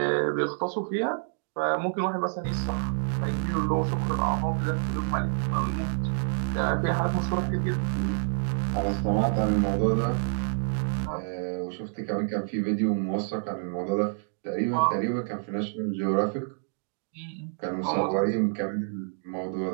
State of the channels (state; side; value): silent; left; digital silence